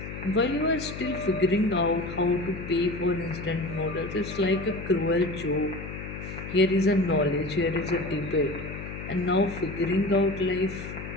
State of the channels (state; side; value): noise; left; hum, 9 dB below the sound